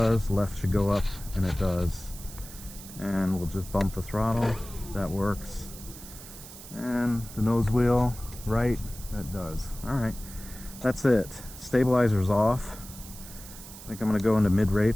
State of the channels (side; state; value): right; noise; hiss, 15 dB below the sound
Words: Left should go up, and it does. And we'll just bump the throttle. That works. And the nose wheel, right, that does. All right, that's it. Stabilizer's off. I think I'm gonna go into mid